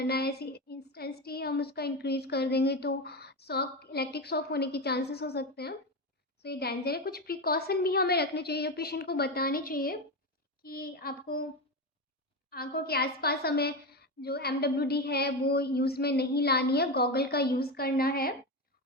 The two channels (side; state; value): both; normal; correlation 0.16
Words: है, ऐसी इंटेंसिटी हम उसका इंक्रीज़ कर देंगे तो शॉक, इलेक्ट्रिक शॉक होने के चांसेस हो सकते हैं। तो ये डेंजर है। कुछ प्रिकॉशन भी हमें रखने चाहिए, जो पेशेंट को बताने चाहिए कि आपको आंखों के आसपास हमें जो एमडब्ल्यूडी है वो यूज़ में नहीं लानी है, गॉगल का यूज़ करना है।